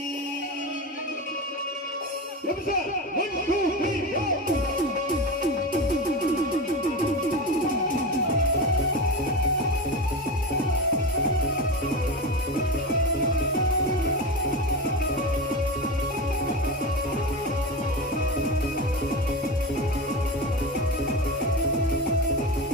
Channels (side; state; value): both; normal; correlation 0.23